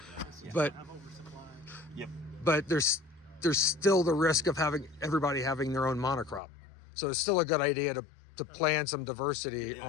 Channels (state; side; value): drops out; right; at 6.4 s